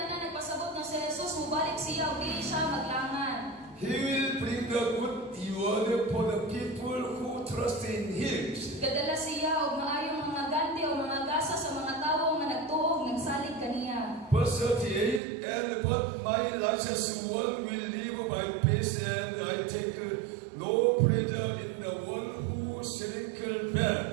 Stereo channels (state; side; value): drops out; left; at 15.2 s